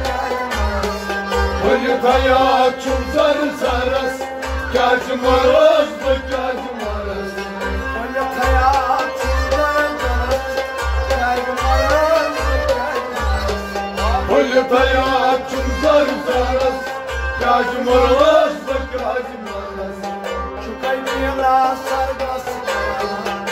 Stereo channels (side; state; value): both; identical; correlation 1.00